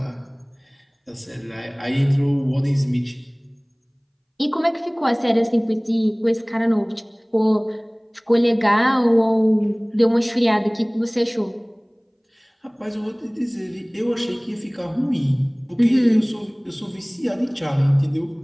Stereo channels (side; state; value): both; identical; correlation 1.00